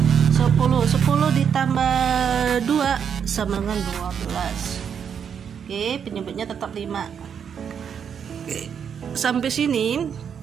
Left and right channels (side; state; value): left; quieter; 7.6 dB